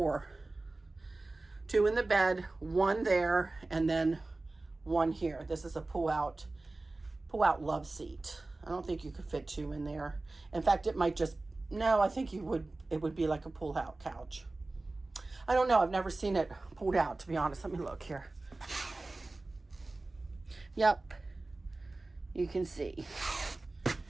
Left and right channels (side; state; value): left; quieter; 3.1 dB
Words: 2 in the bed, 1 there, and then 1 here. This is a pull-out love seat. I don't think you could fit 2 in there. In fact, it might just, no, I think it would be like a pull-out couch. I don't know. I've never seen it pulled out, to be honest. Let me look here. Yep. You can see.